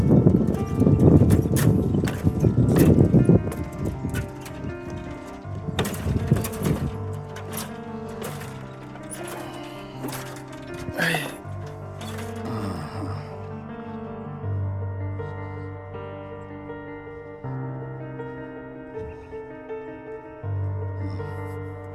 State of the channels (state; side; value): identical; both; correlation 1.00